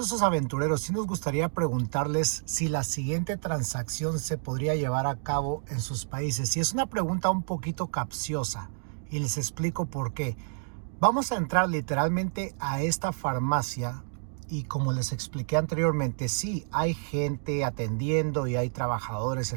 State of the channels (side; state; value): left; silent; digital silence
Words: aventureros, sí nos gustaría preguntarles si la siguiente transacción se podría llevar a cabo en sus países. Y es una pregunta un poquito capciosa y les explico por qué. Vamos a entrar literalmente a esta farmacia y como les expliqué anteriormente, sí, hay gente atendiendo y hay trabajadores